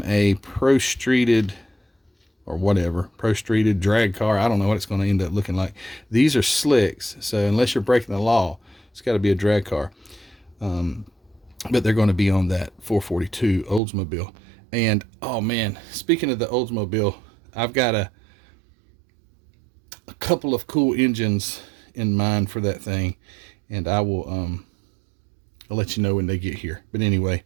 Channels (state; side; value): drops out; left; at 13.8 s